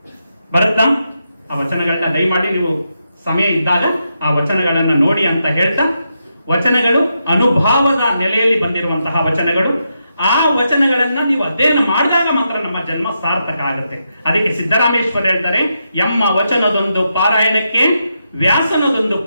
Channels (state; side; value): inverted; both; correlation -0.84